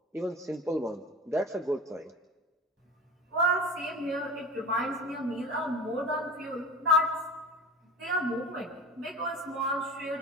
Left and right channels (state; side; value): normal; both; correlation 0.34